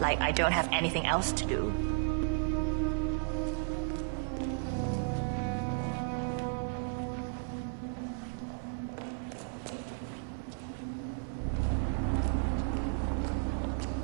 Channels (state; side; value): silent; left; 55 dB below the other